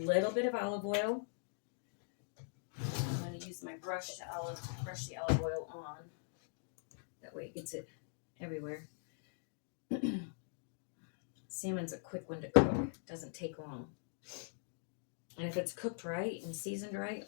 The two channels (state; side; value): silent; right; digital silence